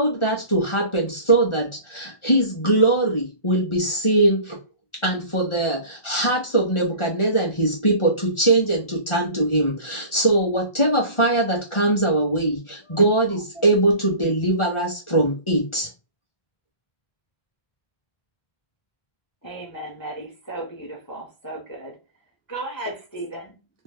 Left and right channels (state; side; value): late; right; 1.4 ms